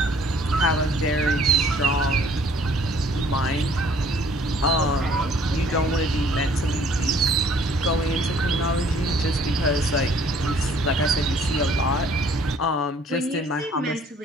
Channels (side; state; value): both; normal; correlation 0.58